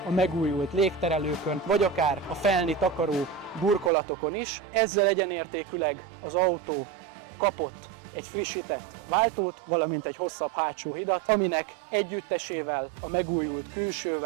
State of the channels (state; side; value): drops out; left; at 3.9 s